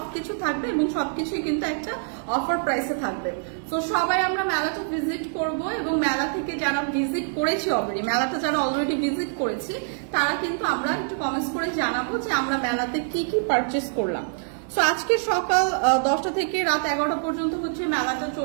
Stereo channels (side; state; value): left; silent; 62 dB below the other